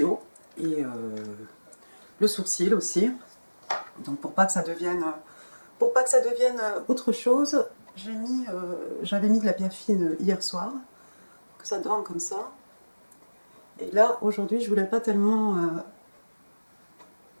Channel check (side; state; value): both; inverted; correlation -1.00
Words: et le sourcil aussi. Donc pour pas que ça devienne autre chose, j'avais mis de la biafine hier soir, que ça dorme comme ça. Et là, aujourd'hui, je voulais pas tellement